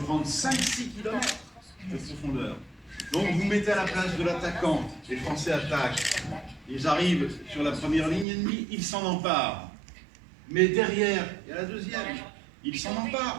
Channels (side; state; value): left; drops out; at 8.2 s